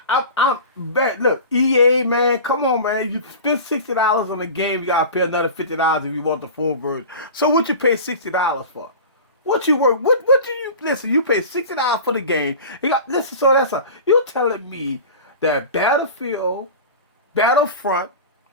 I'm back. Look, EA, man, come on, man. You spend $60 on the game, you gotta pay another $50 if you want the full version. So what you pay $60 for? What you work? What do you listen? You pay $60 for the game. You got listen. So you telling me that Battlefront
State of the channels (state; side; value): inverted; both; correlation -0.34